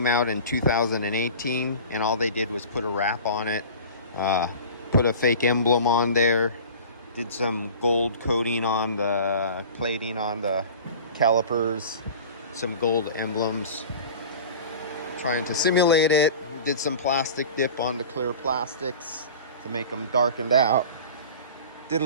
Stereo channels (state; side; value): inverted; both; correlation -0.39